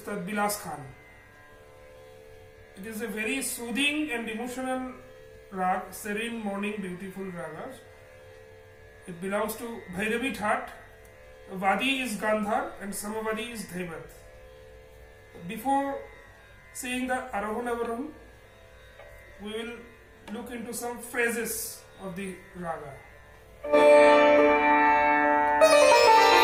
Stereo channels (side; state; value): both; identical; correlation 1.00